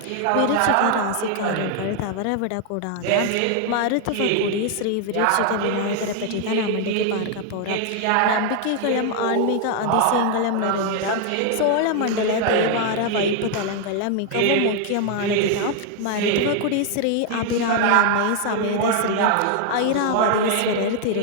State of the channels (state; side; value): different; both; correlation 0.00